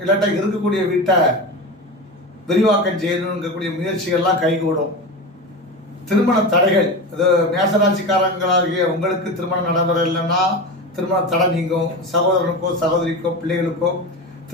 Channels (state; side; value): normal; both; correlation 0.24